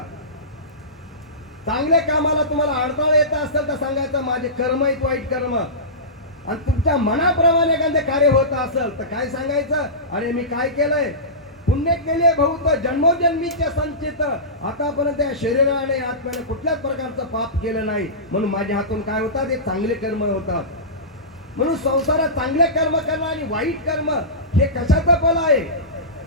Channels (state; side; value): normal; both; correlation -0.20